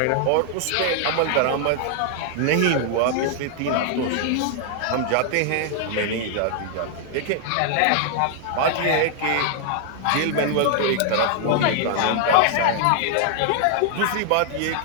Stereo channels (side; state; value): both; different; correlation 0.00